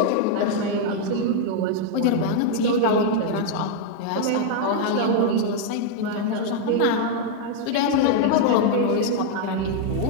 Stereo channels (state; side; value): different; both; correlation 0.00